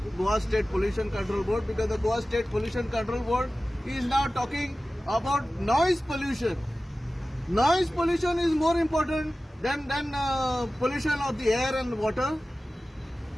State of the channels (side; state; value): both; normal; correlation 0.96